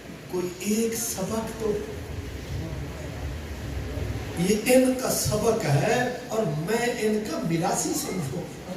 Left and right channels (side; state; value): both; identical; correlation 1.00